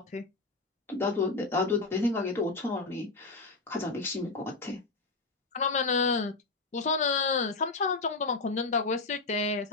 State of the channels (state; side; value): quieter; right; 3.7 dB